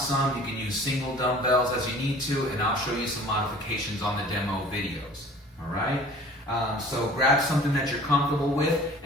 you can use single dumbbells as you need to, and I'll show you some modifications on the demo videos. All right, so grab something that you're comfortable with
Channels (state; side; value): normal; both; correlation 0.47